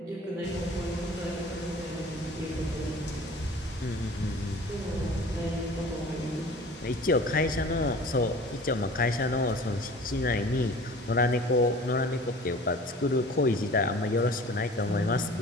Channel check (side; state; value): both; normal; correlation 0.44